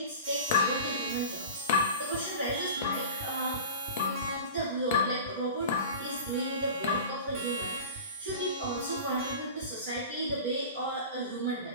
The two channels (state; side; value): inverted; both; correlation -0.35